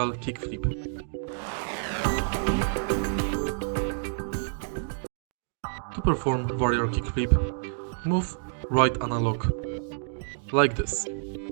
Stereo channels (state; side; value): silent; left; digital silence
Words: Kickflip. To perform Varial Kickflip, move right analog, like this.